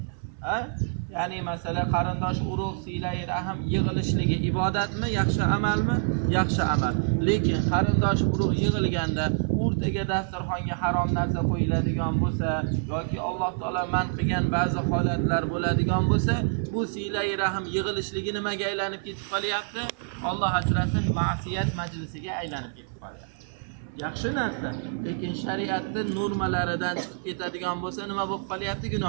Ya'ni masala qarindosh urug' siylay rahim yig'ilishligi ibodatmi, yaxshi amalmi? Yaxshi amal. Lekin qarindosh urug' yig'ilganda o'rtaga dasturxonga harom narsa qo'yiladigan bo'lsa yoki Alloh taolo man qilgan ba'zi holatlar bo'ladigan bo'lsa, bu siylay rahim yig'ilishligi nimaga aylanib ketib qolyapti? Alloh asrasin, ma'siyat majlisiga aylanib ketib qolyapti. Yaxshi narsa, lekin shariatning normalaridan chiqib ketadigan bo'lsa nima bo'lib qolyapti?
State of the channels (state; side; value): silent; left; 60 dB below the other